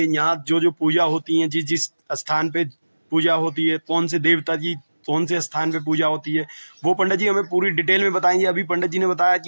यहाँ जो जो पूजा होती है, जिस जिस स्थान पे पूजा होती है, कौन से देवता की कौन से स्थान पे पूजा होती है, वो पंडित जी हमें पूरी डिटेल में बताएंगे। अभी पंडित जी ने बताया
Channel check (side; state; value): both; inverted; correlation -1.00